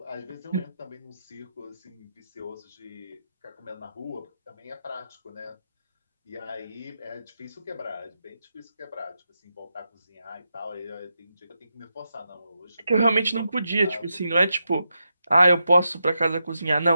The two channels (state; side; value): inverted; both; correlation -0.86